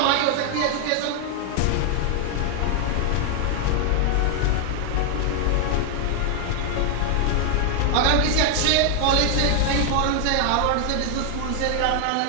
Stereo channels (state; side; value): different; both; correlation 0.00